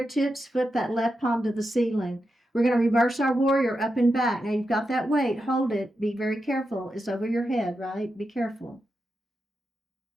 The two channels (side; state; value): both; normal; correlation 0.88